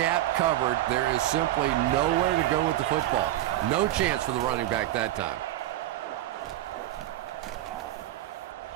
covered. There is simply nowhere to go with the football. No chance for the running back that time.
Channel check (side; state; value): left; quieter; 14.1 dB